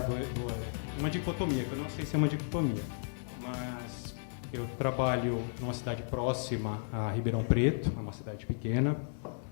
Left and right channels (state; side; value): silent; right; digital silence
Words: uma dicotomia, que eu não sei se é uma dicotomia, mas eu trabalho numa cidade próxima a Ribeirão Preto, é uma cidade pequena,